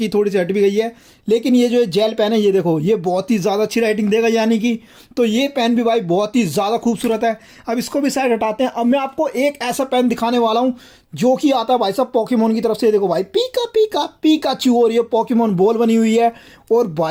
थोड़ी सी हट भी गई है। लेकिन ये जो है जेल पेन है, ये देखो ये बहुत ही ज़्यादा अच्छी राइटिंग देगा यानी कि। तो ये पेन भी भाई बहुत ही ज़्यादा खूबसूरत है। अब इसको भी साइड हटाते हैं। अब मैं आपको एक ऐसा पेन दिखाने वाला हूँ जो कि आता है भाई साहब पोकेमोन की तरफ से। देखो भाई पीका पीका पीकाचू, और ये पोकेमोन बॉल बनी हुई है। और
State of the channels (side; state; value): both; identical; correlation 1.00